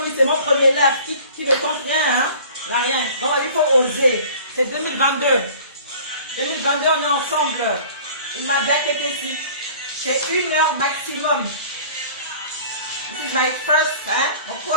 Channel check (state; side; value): inverted; both; correlation -0.46